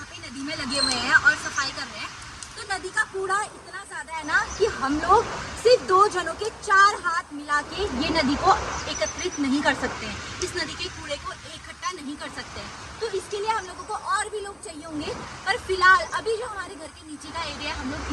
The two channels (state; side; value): identical; both; correlation 1.00